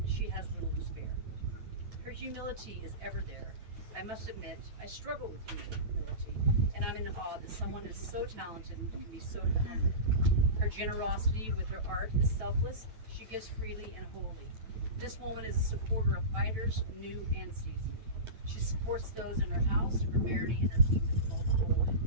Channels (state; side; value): late; left; 9.1 ms